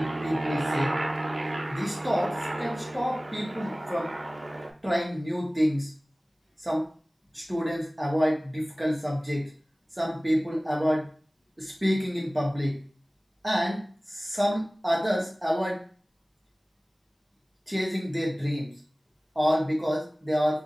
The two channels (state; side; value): normal; both; correlation 0.98